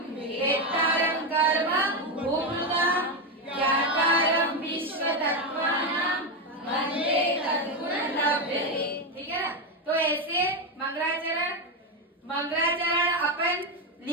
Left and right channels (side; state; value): both; normal; correlation 0.10